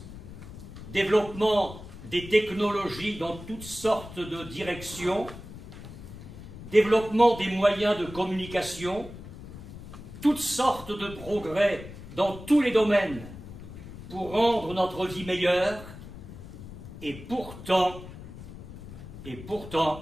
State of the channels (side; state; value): left; noise; rumble, 13 dB below the sound